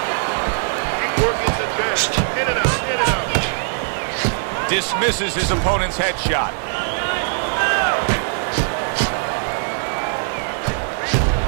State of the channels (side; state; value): left; silent; digital silence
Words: Dismisses his opponent's headshot.